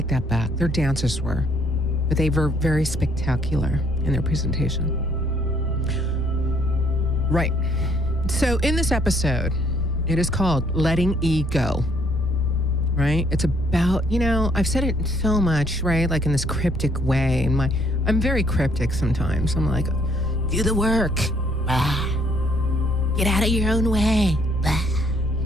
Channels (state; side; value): noise; left; rumble, 10 dB below the sound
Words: that back. Their dancers were, but they were very spectacular in their presentation. Right. So in this episode, it is called Letting E Go. Right? It's about, I've said it so much, right? Like in this cryptic way. And I'm very cryptic sometimes. I'm like, do the work. Get out of your own way.